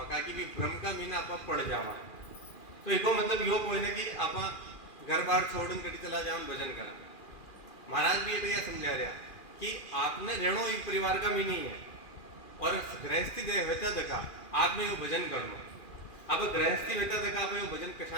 का कि भ्रम का मीना आप पड़ जावा तो एको मतलब यो कोई ना कि आप घर बार छोड़न कड़ी चला जाओ भजन करा। महाराज भी ये समझा रहा कि आपने रेणो एक परिवार का मीनी है और गृहस्थी होता देखा आपने वो भजन करना। अब गृहस्थी होता देखा आप वो भजन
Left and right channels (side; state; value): right; late; 2.4 ms